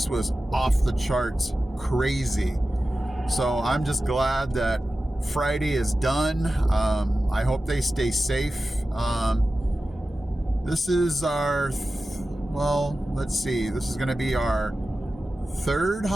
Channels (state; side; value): normal; both; correlation 0.94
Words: was off the charts crazy. So I'm just glad that Friday is done. I hope they stay safe. This is our, let's see, this is going to be our third